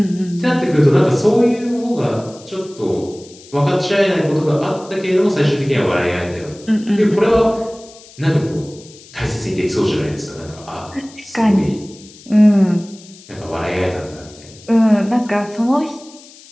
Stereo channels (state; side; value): noise; left; hiss, 22 dB below the sound